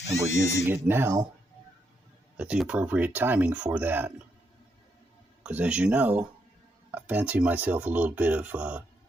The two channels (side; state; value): both; normal; correlation 0.79